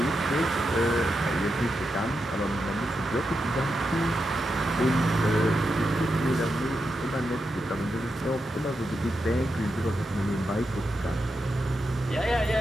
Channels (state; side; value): normal; both; correlation 0.87